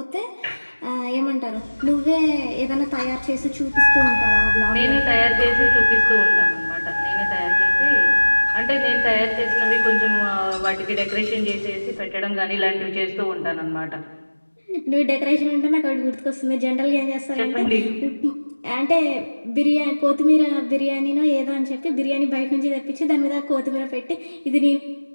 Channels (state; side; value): inverted; both; correlation -1.00